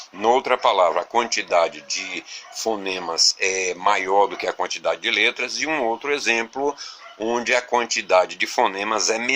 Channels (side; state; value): both; identical; correlation 1.00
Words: noutra palavra a quantidade de fonemas é maior do que a quantidade de letras, e um outro exemplo onde a quantidade de fonemas é